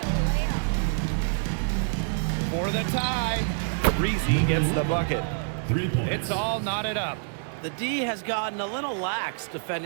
For the tie, Breezy gets the bucket. 3 points. It's all knotted up. The D has gotten a little lax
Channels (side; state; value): left; silent; digital silence